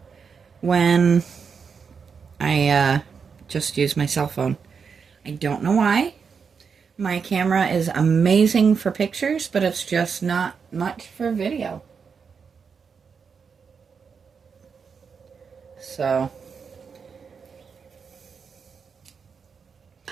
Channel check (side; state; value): left; quieter; 6.0 dB